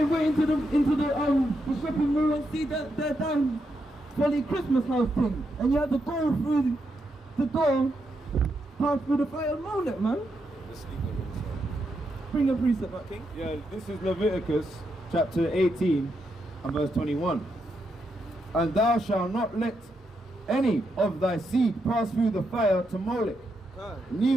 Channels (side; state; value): both; normal; correlation 0.82